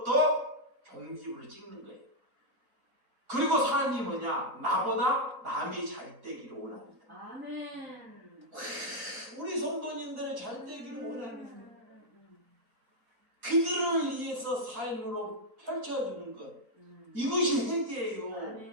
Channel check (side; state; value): both; normal; correlation -0.02